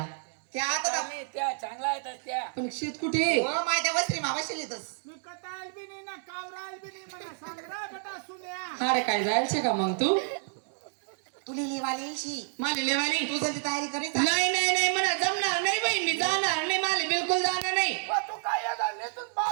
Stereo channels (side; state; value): left; silent; digital silence